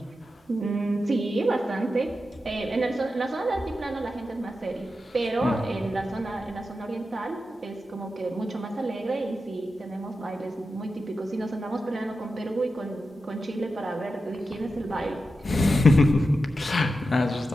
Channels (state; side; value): normal; both; correlation 0.90